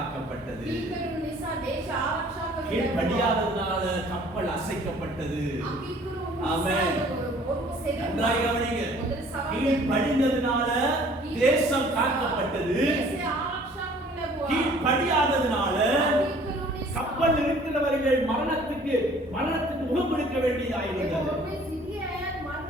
கீழ்ப்படியாததனால கப்பல் அசைக்கப்பட்டது. ஆமென். நன்றாக கவனிங்க. கீழ்ப்படிந்ததனால தேசம் காக்கப்பட்டது. கீழ்ப்படியாததனால கப்பல் இருக்கிறவர்கள் மரணத்துக்கு முகம் கொடுக்க வேண்டியதாயிருந்தது.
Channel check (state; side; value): normal; both; correlation 0.54